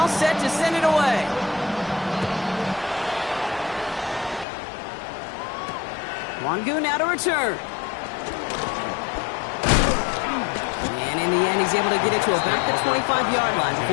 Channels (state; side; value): drops out; right; at 4.5 s